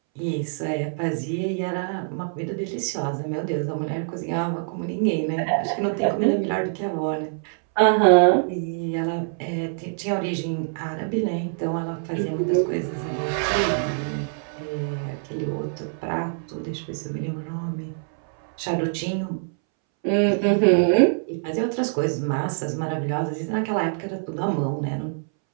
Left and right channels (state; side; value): silent; left; 62 dB below the other